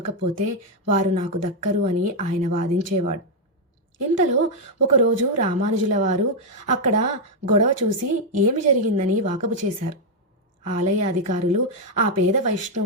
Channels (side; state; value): both; normal; correlation 0.00